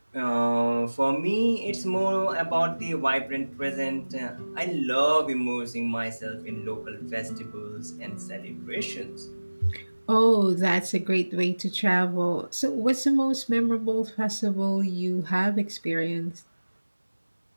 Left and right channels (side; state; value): both; inverted; correlation -1.00